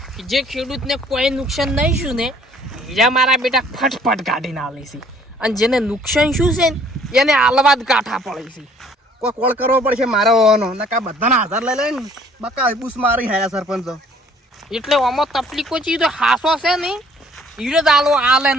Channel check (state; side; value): normal; both; correlation 0.58